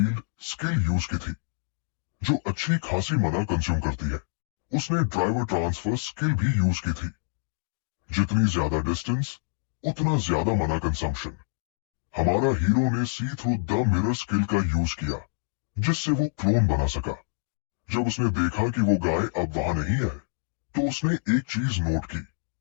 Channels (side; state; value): right; silent; digital silence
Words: स्किल यूज की थी, जो अच्छी खासी मना कंज्यूम करती है। उसने ड्राइवर ट्रांसफर स्किल भी यूज की थी। जितनी ज्यादा डिस्टेंस उतना ज्यादा मना कंजम्पशन। हमारा हीरो ने सी थ्रू द मिरर स्किल का यूज किया जिससे वो क्लोन बना सका। जब उसने देखा कि वो गाय अब वहां नहीं है तो उसने एक चीज नोट की।